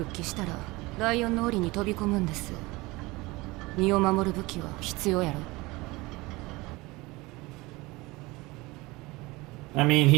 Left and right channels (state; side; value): quieter; left; 22.2 dB